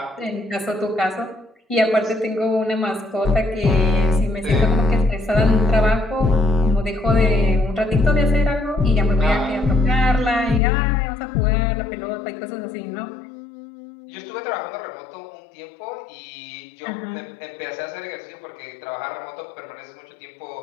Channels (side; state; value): right; drops out; at 10.6 s